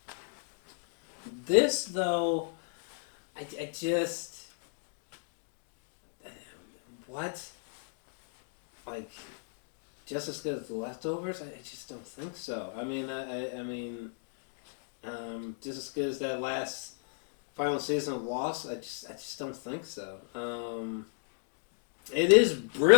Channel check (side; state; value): right; silent; digital silence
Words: This though, I just what? Like, just as good as the Leftovers? I just don't think so. I mean, just as good as that last final season of Lost? I just don't think so. It is